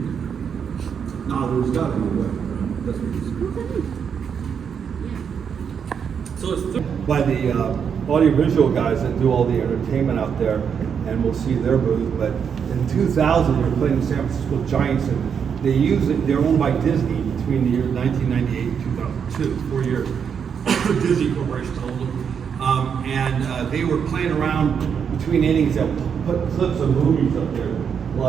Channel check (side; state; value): left; quieter; 7.2 dB